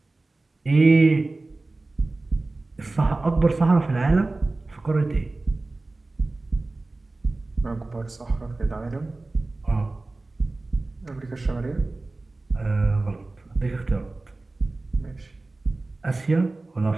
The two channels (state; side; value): quieter; left; 3.2 dB